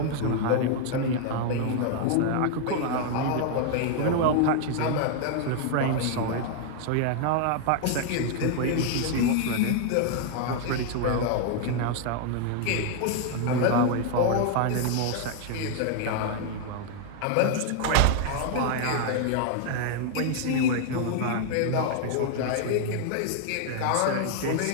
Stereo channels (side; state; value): both; different; correlation 0.00